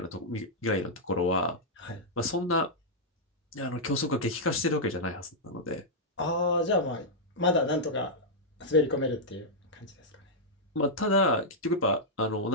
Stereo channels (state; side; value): normal; both; correlation -0.06